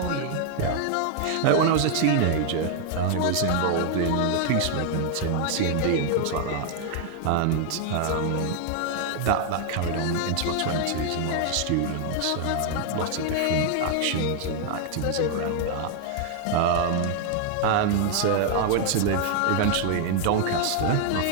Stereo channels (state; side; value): different; both; correlation 0.00